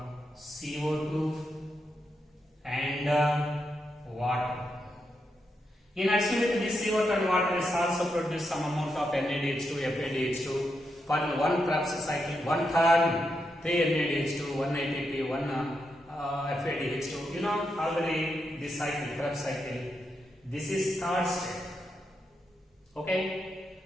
CO2 and water. In addition with this CO2 and water is also produce some amount of NADH2, FADH2 for one Krebs cycle, one turn, 3 NADH2, 1 ATP, 1 FADH2. You know already this cycle, Krebs cycle. This is third step. Okay,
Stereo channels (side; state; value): both; normal; correlation 0.84